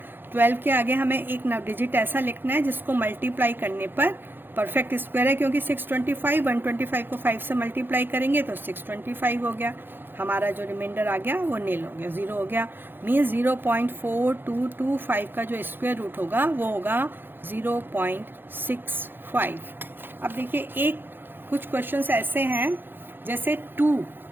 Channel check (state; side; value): late; left; 0.099 ms